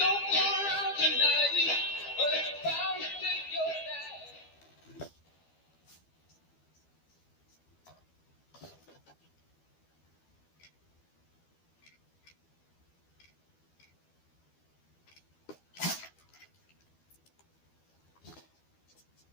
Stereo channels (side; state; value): right; late; 12 ms